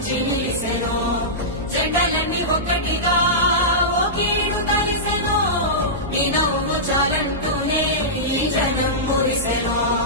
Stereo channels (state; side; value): normal; both; correlation -0.15